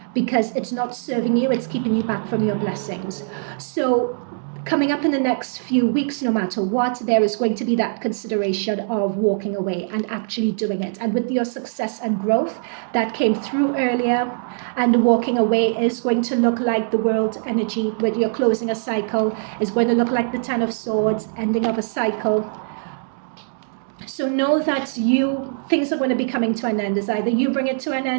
because it's not serving you, it's keeping you back from your blessings. So coming up in the next few weeks, no matter what, there is going to be that consideration of walking away and actually doing it. And with your success and growth that came through earlier, and walking away is going to look like the world energy, when you're closing a cycle, is going to look like the Ten of Swords, ending of a cycle. So know that things are going to be coming to an end. It's either you bring it to an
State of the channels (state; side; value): silent; left; digital silence